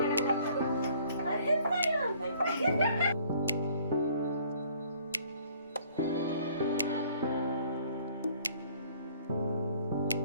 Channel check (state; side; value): inverted; both; correlation -0.58